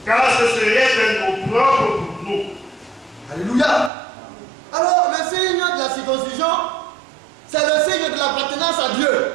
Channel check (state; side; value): drops out; left; at 3.9 s